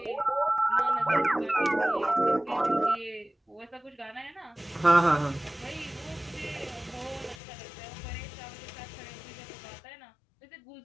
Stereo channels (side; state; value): right; drops out; at 7.4 s